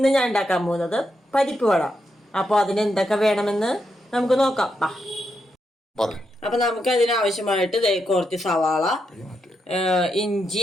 ഞാൻ ഉണ്ടാക്കാൻ പോകുന്നത് പരിപ്പ് വട. അപ്പോൾ അതിന് എന്തൊക്കെ വേണമെന്ന് നമുക്ക് നോക്കാം. അപ്പൊ നമുക്ക് അതിനാവശ്യമായിട്ട് കുറച്ച് സവാള,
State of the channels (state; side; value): normal; both; correlation 0.83